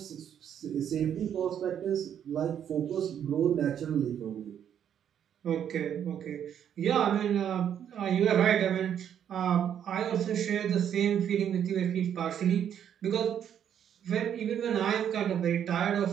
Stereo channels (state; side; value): quieter; left; 9.2 dB